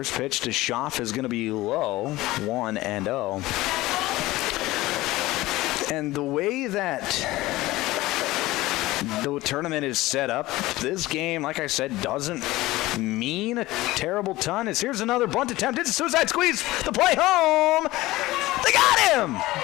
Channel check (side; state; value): right; quieter; 18.3 dB